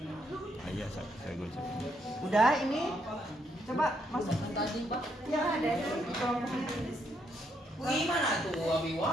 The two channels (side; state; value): both; normal; correlation 0.75